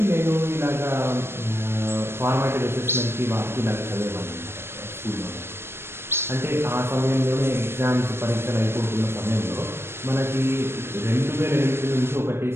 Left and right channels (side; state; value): left; late; 0.12 ms